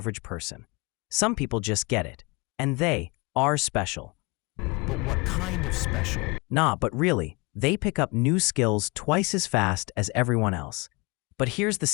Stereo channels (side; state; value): right; quieter; 27.4 dB